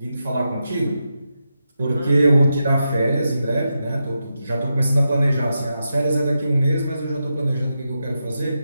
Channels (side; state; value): both; inverted; correlation -0.87